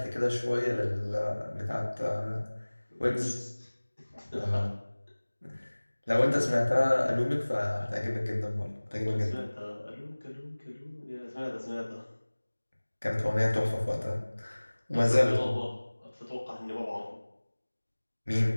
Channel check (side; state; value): both; inverted; correlation -1.00